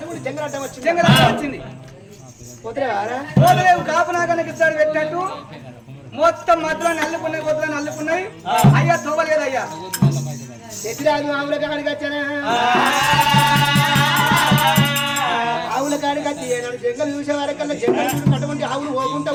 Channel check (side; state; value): both; identical; correlation 1.00